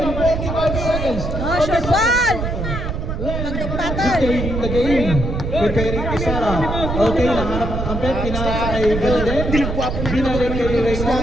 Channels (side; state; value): right; noise; rumble, 3 dB below the sound